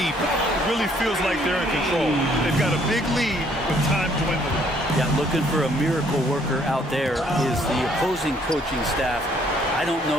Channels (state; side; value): normal; both; correlation 0.64